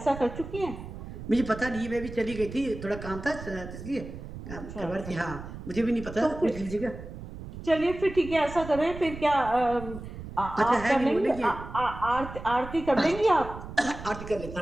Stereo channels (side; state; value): right; noise; rumble, 11 dB below the sound